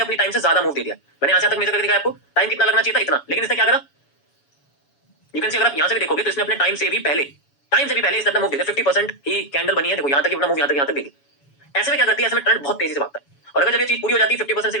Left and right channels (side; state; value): right; late; 7.1 ms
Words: अपनी टाइम से ज्यादा मूव दे दिया। मैंने यहाँ से तक मेजर करके दिखाया आपको टाइम कितना लगना चाहिए था, इतना, लेकिन इसने क्या करा, यू कैन सी अगर आप यहाँ से भी देखोगे तो इसने अपने टाइम से भी पहले इसने अपना मूव दे दिया। 50% ही कैंडल बनी है, देखो यहाँ तक अपना मूव यहाँ तक देगी। ऐसे में क्या करती है, ऐसे में ट्रेंड बहुत तेजी से भागता है, और अगर जब ये चीज पूरी हो जाती है 50% से